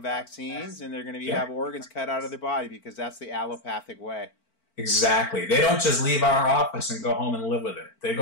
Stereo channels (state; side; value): late; right; 4.5 ms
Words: vaccines, and they're going to have organs cut out of their body because that's the allopathic way. Exactly. They don't just leave our office and go home and live with it. They